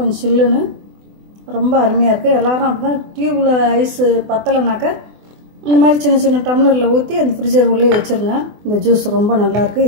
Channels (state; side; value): late; left; 24 ms